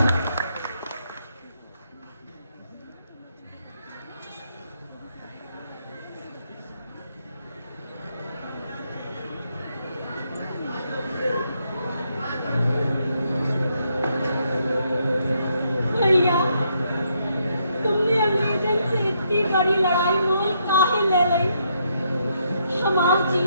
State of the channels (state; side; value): inverted; both; correlation -0.75